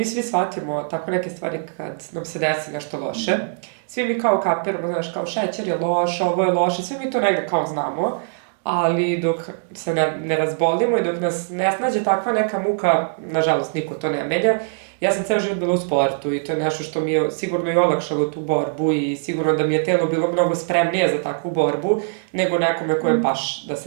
svi shvatimo tako neke stvari kad nam se desi nešto loše. Svi mi kao kapiramo, znaš, kao šećer je loš, ovo je loše, svi mi to negde kao znamo, ali dok se ne razbolimo i dok nas ne snađe takva neka muka, nažalost niko to ne menja. Ja sam ceo život bila u sportu i to je nešto što mi je sigurno i olakšalo tu borbu i sigurno da mi je telo bilo mnogo spremnije za takvu borbu nego nekome kojem baš da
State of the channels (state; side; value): silent; left; digital silence